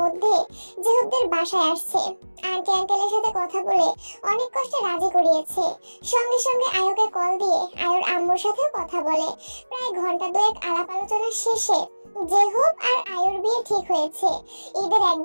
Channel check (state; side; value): inverted; both; correlation -1.00